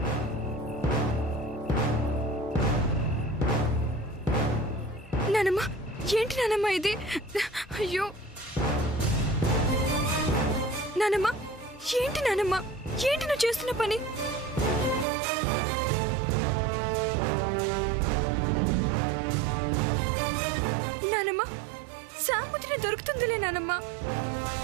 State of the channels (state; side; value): drops out; left; at 15.1 s